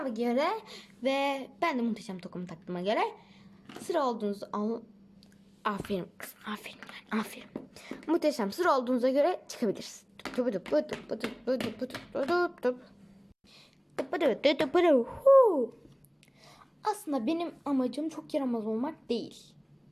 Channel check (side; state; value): both; identical; correlation 1.00